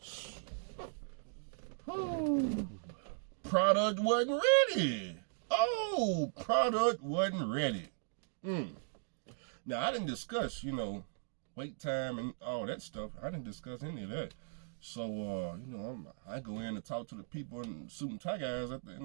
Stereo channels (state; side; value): silent; left; digital silence